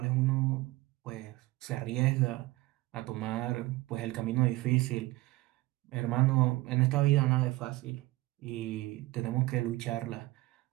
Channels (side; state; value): left; quieter; 19.7 dB